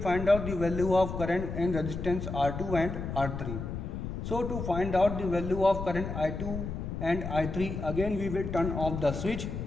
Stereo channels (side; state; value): left; noise; rumble, 5 dB below the sound